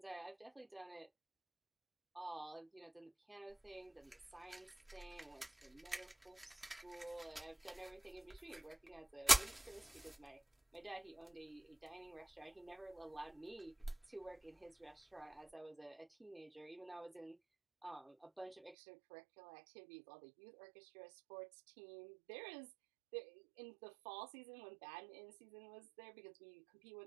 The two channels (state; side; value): drops out; left; at 18.8 s